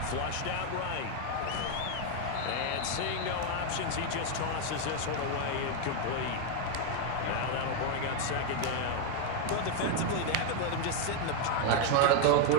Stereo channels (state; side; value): different; both; correlation 0.01